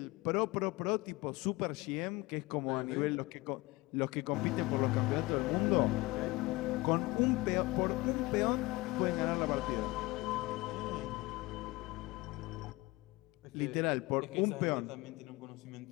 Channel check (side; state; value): right; quieter; 21.8 dB